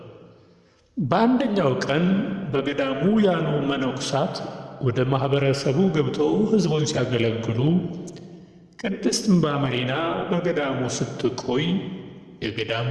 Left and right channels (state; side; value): identical; both; correlation 1.00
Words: በአንደኛው ቀን በገዳሙ ያሉ መነኮሳት ወደ ማኅበረሰቡ ገብተው ሕዝቡን ሲያገለግሉ ቅድስት እምባ መሪና በገዳሙ ስትቆይ የገዳሙ